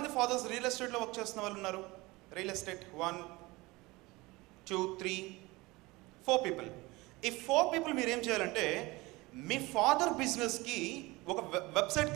ఫాదర్స్ రియల్ ఎస్టేట్లో వర్క్ చేస్తున్న వాళ్ళు ఉన్నారు? Real estate 1, 2, 3, 4 people. ఈ 4 పీపుల్ మీరు ఏం చేయాలంటే మీ ఫాదర్ బిజినెస్కి ఒక వెబ్సైట్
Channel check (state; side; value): quieter; left; 22.2 dB